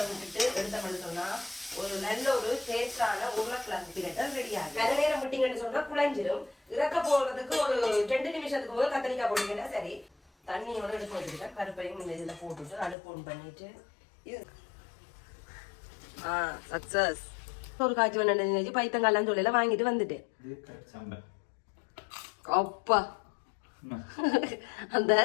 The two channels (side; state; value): right; drops out; at 13.0 s